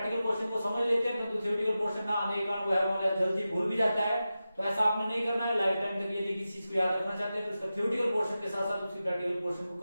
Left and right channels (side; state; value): both; inverted; correlation -0.93